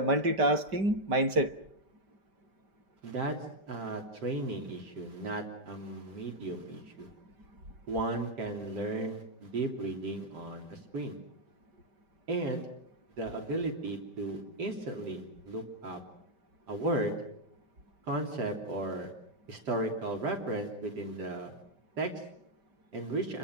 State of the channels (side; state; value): left; late; 5.1 ms